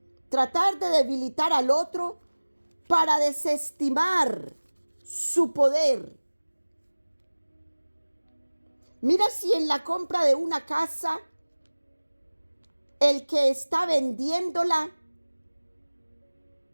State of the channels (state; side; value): inverted; both; correlation -1.00